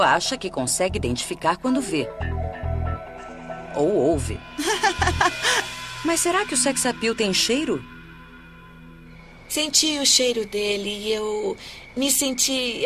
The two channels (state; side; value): identical; both; correlation 1.00